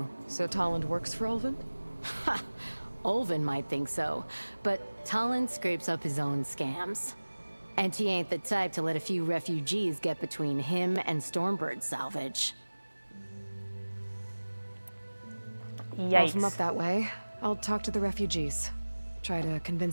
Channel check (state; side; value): inverted; both; correlation -1.00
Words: So Talland works for Olvin? Ha! Olvin might think so, but Talland scrapes up his own scams. And he ain't the type to let a few refugees get between him and Stormbird salvage. Yikes. Well, if I'm up that way, I'll talk to the refugees. Try to